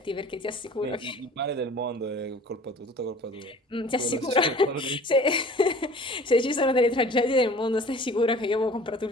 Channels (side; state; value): both; normal; correlation 0.46